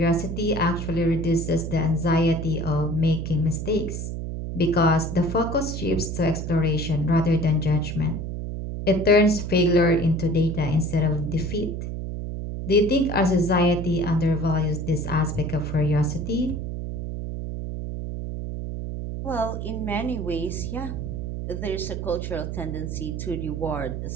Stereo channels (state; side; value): noise; right; hum, 5 dB below the sound